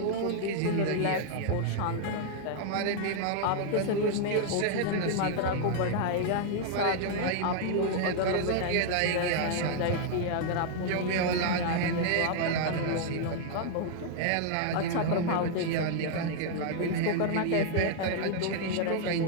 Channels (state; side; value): different; both; correlation 0.00